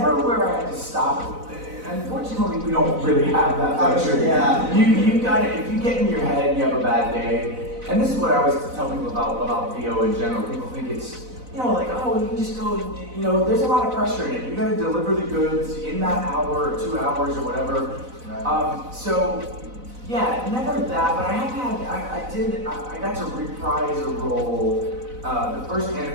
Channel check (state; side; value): late; left; 4.0 ms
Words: where I had to stop. Unfortunately, we don't really have that luxury. Yeah. You got it. If you get in your head and you have a bad day, and this is what I always tell people about VO in general. People think it's, like, oh, you can just go, there's a lot of pressure in it. You got to deliver the goods in that hour or 2 hours or whatever. So, yeah, never that, but I got to reprise a role. The first